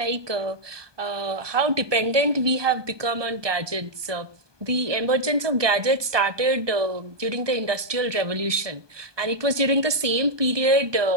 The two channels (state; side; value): late; left; 1.2 ms